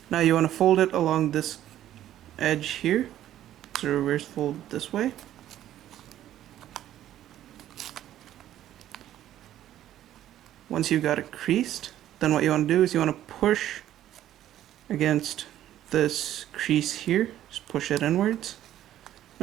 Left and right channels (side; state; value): left; quieter; 12.3 dB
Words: Now you want to fold it along this edge here. So reverse fold this way. Once you've got it creased, then what you want to do is you want to push against this crease here. Just push it inwards.